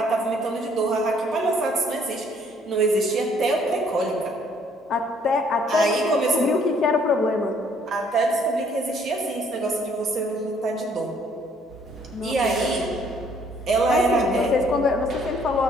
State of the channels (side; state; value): both; normal; correlation 0.63